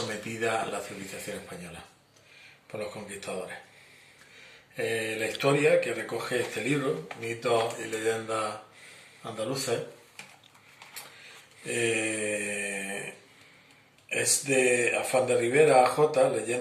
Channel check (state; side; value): identical; both; correlation 1.00